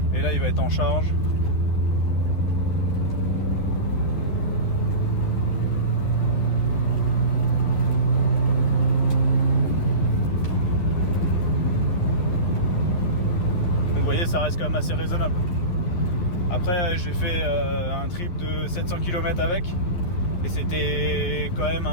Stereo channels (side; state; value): right; late; 11 ms